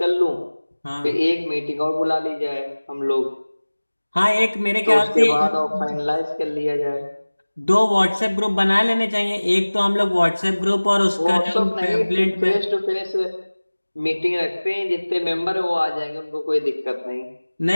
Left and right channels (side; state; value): both; inverted; correlation -1.00